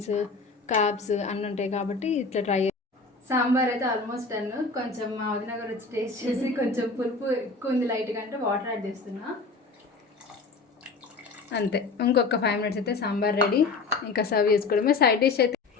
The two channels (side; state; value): right; quieter; 4.1 dB